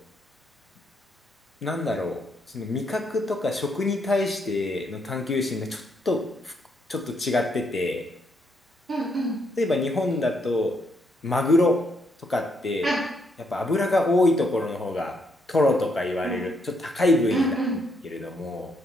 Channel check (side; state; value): both; normal; correlation 0.75